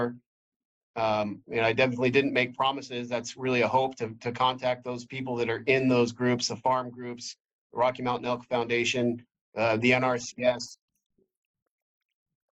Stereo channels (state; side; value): identical; both; correlation 1.00